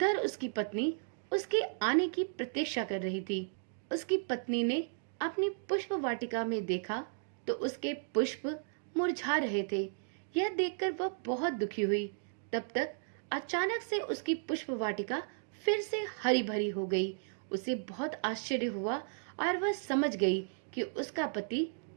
उसकी पत्नी उसके आने की प्रतीक्षा कर रही थी। उसकी पत्नी ने अपनी पुष्प वाटिका में देखा, तो उसके पुष्प मुरझा रहे थे। यह देखकर वह बहुत दुखी हुई। तब तक अचानक से उसकी पुष्प वाटिका फिर से हरी भरी हो गई। उसे बहुत आश्चर्य हुआ और वह समझ गई कि उसका पति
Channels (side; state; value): left; silent; digital silence